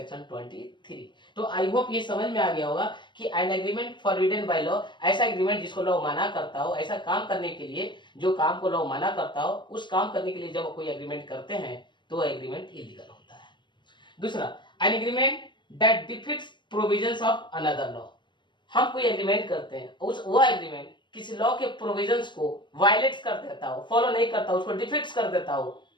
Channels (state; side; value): late; right; 0.22 ms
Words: 23। तो आई होप ये समझ में आ गया होगा कि N agreement forbidden by law ऐसा एग्रीमेंट जिसको लॉ मना करता हो, ऐसा काम करने के लिए जो काम को लॉ मना करता हो, उस काम करने के लिए जब कोई एग्रीमेंट करते हैं तो एग्रीमेंट इलीगल होता है। दूसरा, N agreement that defeats provisions of another law. हम कोई एग्रीमेंट करते हैं, वो एग्रीमेंट किसी लॉ के प्रोविजंस को वायलेट कर देता हो, फॉलो नहीं करता, उसको डिफीट्स कर देता हो,